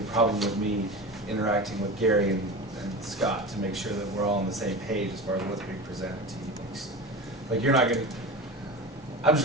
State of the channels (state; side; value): normal; both; correlation 0.28